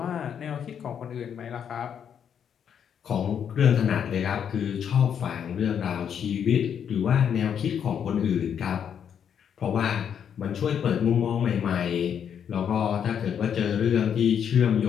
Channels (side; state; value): right; quieter; 8.2 dB